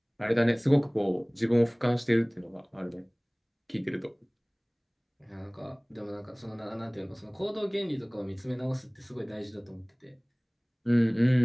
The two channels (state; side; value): identical; both; correlation 1.00